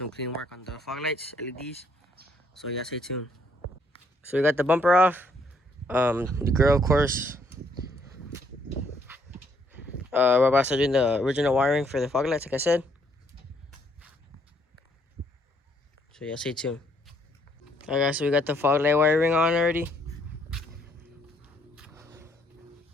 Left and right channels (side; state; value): both; normal; correlation 0.69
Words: clean work on the fog lights, LEDs. So yeah, stay tuned. So we got the bumper off, the grill, of course. We're about to start doing the original wiring for the fog lights, like I said. So yeah, stay tuned. Alright guys, so we got the fog light wiring on already.